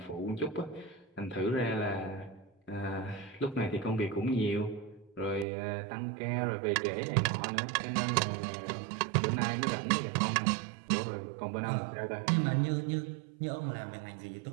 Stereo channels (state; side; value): drops out; left; at 5.5 s